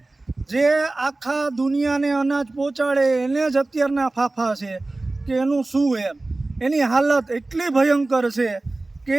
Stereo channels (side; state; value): left; quieter; 3.0 dB